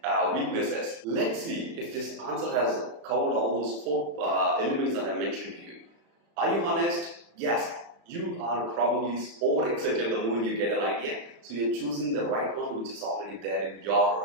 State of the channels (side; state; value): left; late; 35 ms